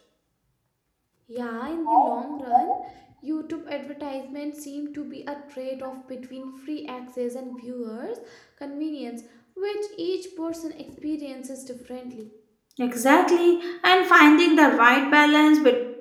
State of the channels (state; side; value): identical; both; correlation 1.00